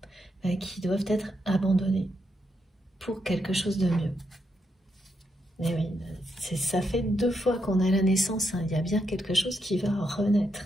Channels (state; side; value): normal; both; correlation 0.81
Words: qui doivent être abandonnés pour quelque chose de mieux. Mais oui, ça fait 2 fois qu'on a la naissance, hein. Il y a bien quelque chose qui va renaître.